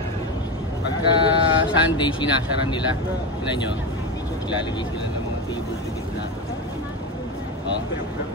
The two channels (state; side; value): normal; both; correlation 0.19